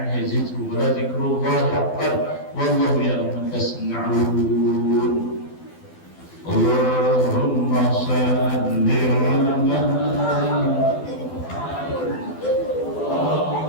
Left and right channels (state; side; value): late; right; 12 ms